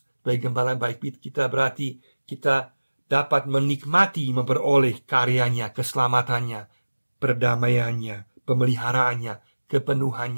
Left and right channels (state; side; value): inverted; both; correlation -1.00